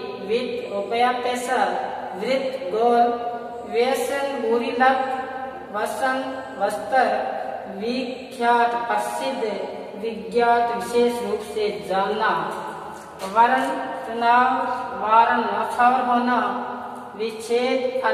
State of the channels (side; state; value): both; identical; correlation 1.00